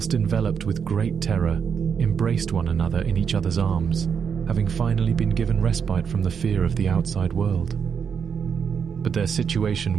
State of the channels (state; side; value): quieter; left; 6.9 dB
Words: enveloped with great terror, embraced one another in each other's arms, having finally been given respite from the fear of the outside world. But their situation